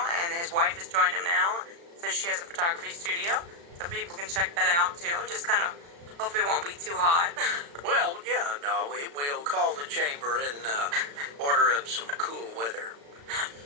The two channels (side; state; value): left; late; 35 ms